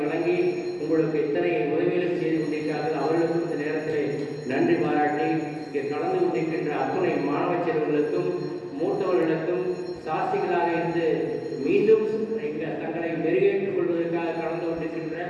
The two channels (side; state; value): both; identical; correlation 1.00